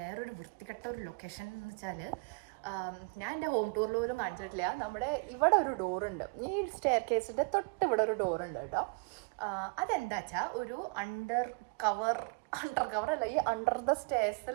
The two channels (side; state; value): left; quieter; 34.8 dB